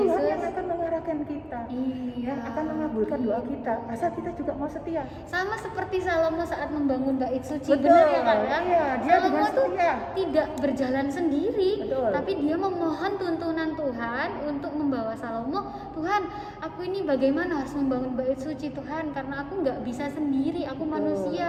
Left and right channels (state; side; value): identical; both; correlation 1.00